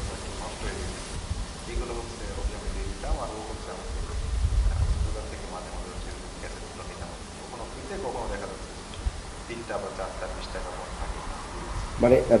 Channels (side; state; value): both; identical; correlation 1.00